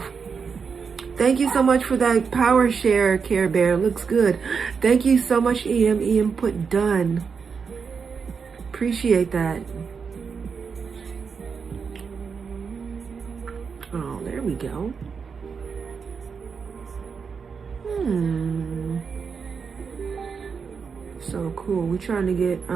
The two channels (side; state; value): left; quieter; 5.8 dB